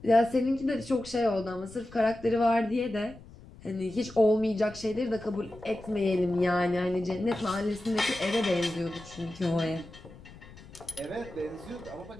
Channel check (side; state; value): left; noise; rumble, 19 dB below the sound